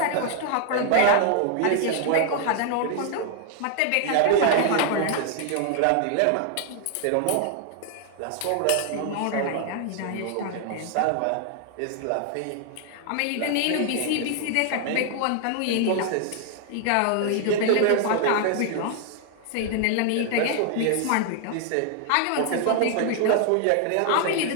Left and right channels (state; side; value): different; both; correlation 0.00